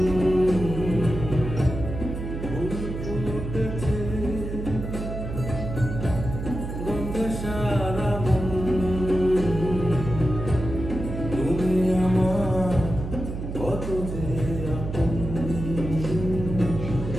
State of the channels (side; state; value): right; noise; hum, 6 dB below the sound